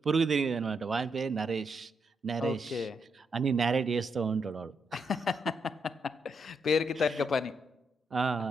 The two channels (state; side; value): normal; both; correlation 0.80